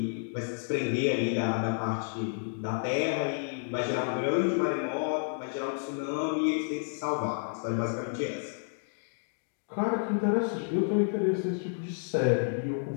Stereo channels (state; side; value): silent; right; digital silence